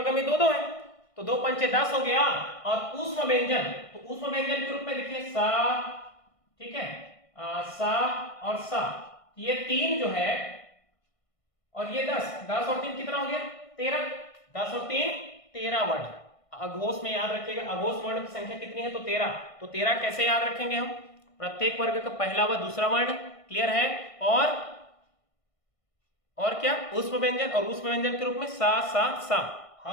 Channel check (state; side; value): late; right; 1.5 ms